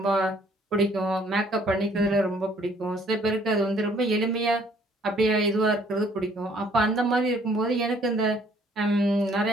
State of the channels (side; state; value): both; normal; correlation 0.61